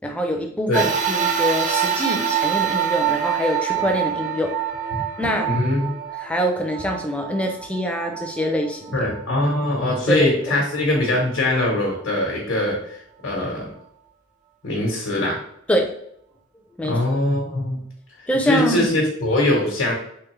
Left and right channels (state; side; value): normal; both; correlation 0.41